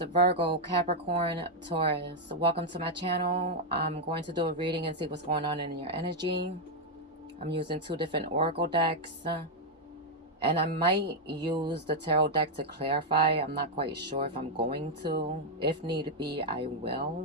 Virgo, Capricorn, Taurus. Welcome to my channel. I'm going to do a reading and see what's going on in your energy. I'm using two different oracle decks. And I might use the tarot deck to clarify. I'm not quite sure if I'm going to. If need be, I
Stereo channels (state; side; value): normal; both; correlation -0.01